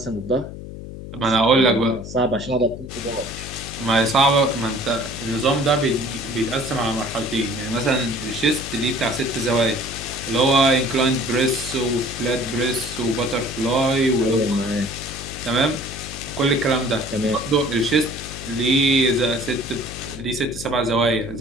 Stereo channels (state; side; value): noise; left; hum, 11 dB below the sound